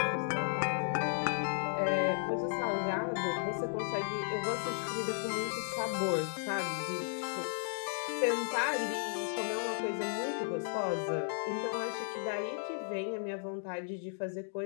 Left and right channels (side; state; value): right; silent; digital silence